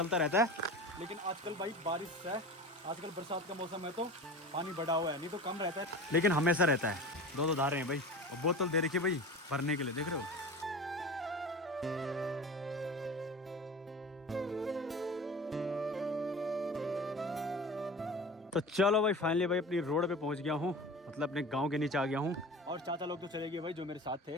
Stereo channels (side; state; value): both; normal; correlation 0.34